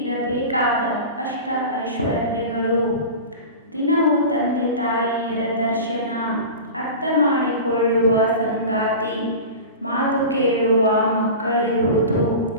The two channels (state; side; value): inverted; both; correlation -0.32